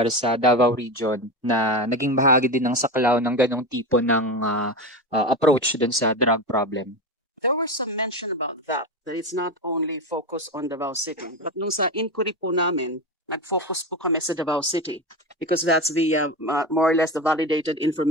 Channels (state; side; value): normal; both; correlation 0.20